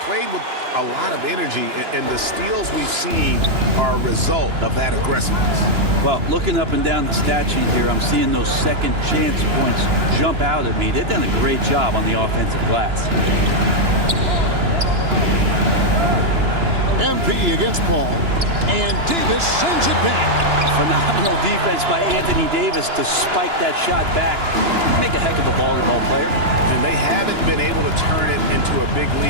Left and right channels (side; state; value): left; late; 2.9 ms